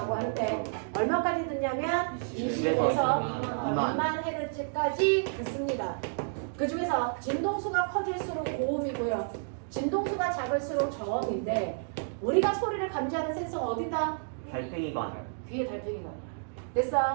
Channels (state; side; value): silent; left; digital silence